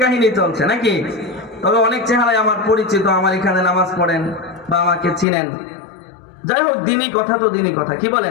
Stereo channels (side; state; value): right; drops out; at 5.2 s